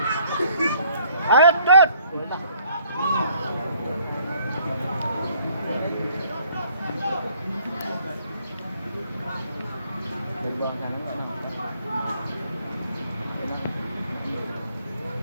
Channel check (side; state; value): both; inverted; correlation -0.62